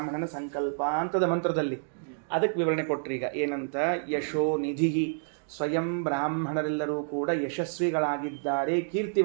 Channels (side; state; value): left; silent; digital silence